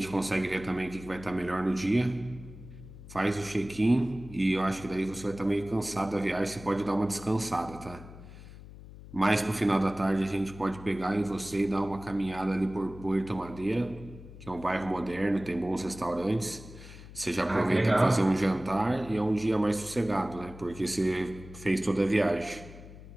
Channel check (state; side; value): noise; left; hum, 16 dB below the sound